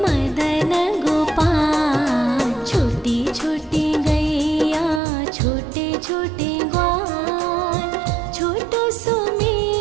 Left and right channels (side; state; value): left; drops out; at 5.0 s